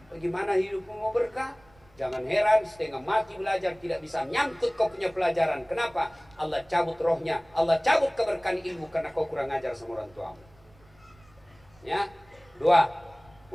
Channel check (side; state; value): right; noise; rumble, 28 dB below the sound